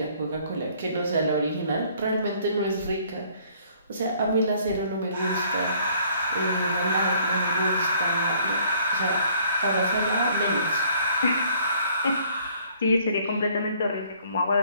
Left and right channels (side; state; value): both; inverted; correlation -0.60